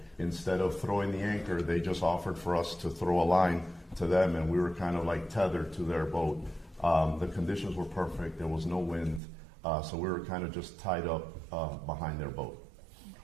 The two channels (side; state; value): left; drops out; at 9.2 s